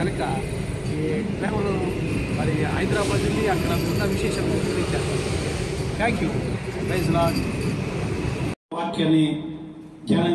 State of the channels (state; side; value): identical; both; correlation 1.00